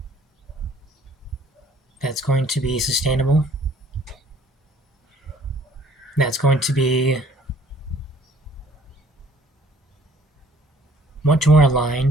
that's going to be sustainable, that's going to be much more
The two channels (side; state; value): both; normal; correlation 0.57